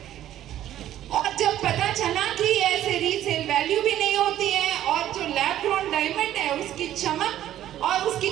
और जब पता चला कि ऐसे रीसेल वैल्यू भी नहीं होती है और जो लैब ग्रोन डायमंड है उसकी चमक और उसकी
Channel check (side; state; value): left; quieter; 12.4 dB